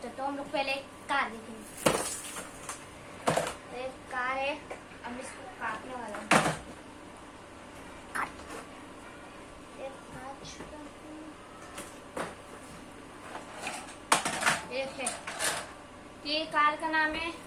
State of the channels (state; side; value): identical; both; correlation 1.00